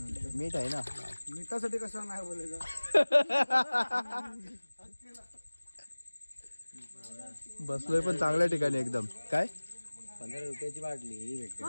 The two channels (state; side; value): inverted; both; correlation -1.00